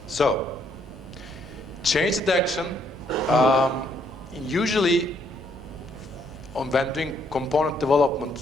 So, change detection, usually when doing component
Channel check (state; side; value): normal; both; correlation 0.70